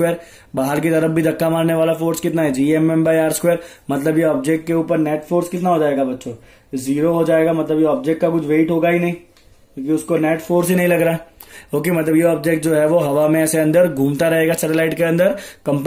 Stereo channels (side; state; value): both; identical; correlation 1.00